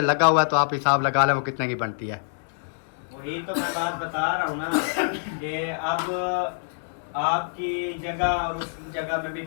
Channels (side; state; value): right; silent; digital silence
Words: लगा हुआ है, तो आप हिसाब लगा लें वो कितने की बनती है। वही तो मैं बात बता रहा हूँ ना कि अब आपकी जगह और उस जगह में भी